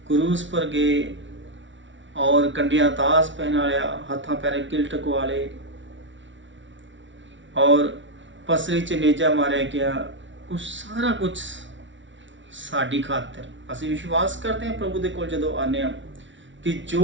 क्रूस पर गए और कंडिया दास पहनाया, हाथा पैरे किल टकवाले और पसरी च नेजा मारे गया, उस सारा कुछ साड़ी खातिर असं विश्वास करते हैं प्रभु दे कोल जदों आने कि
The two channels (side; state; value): left; late; 0.55 ms